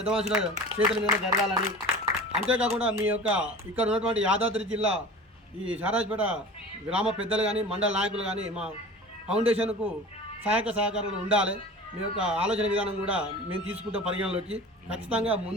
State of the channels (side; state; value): both; normal; correlation 0.38